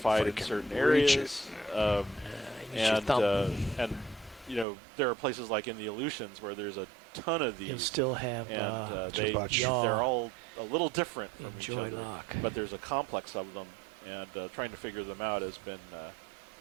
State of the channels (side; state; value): left; drops out; at 4.7 s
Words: in certain areas. Use your thumb. And you know, there are places like in the Aleutians where there's a ton of these. You'll still have and yaw. they're all a little different from each Joy other, lock. but there's a complex of them, and trying to figure them out has been